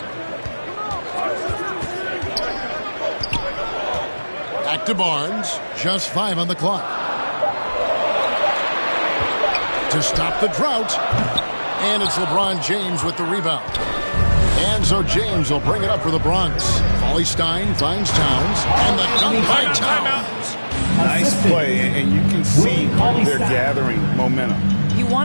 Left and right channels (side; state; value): both; inverted; correlation -1.00